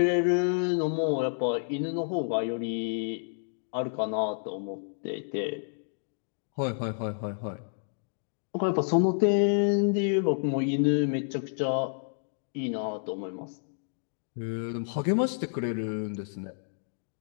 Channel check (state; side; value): silent; right; digital silence